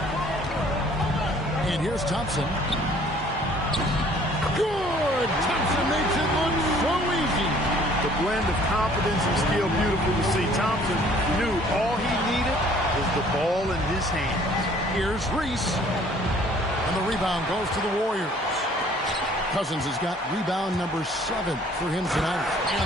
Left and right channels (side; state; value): both; normal; correlation 0.56